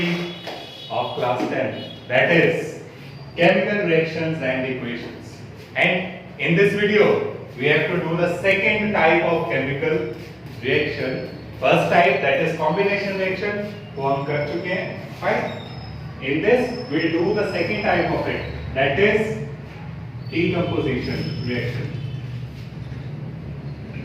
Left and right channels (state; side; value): identical; both; correlation 1.00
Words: of class 10, that is chemical reactions and equations. And in this video we have to do the second type of chemical reaction. First type, that is combination reaction, वो हम कर चुके हैं, fine. In this we will do the second type of it, that is decomposition reaction.